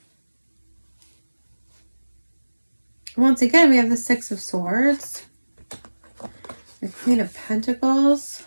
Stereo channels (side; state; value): both; inverted; correlation -1.00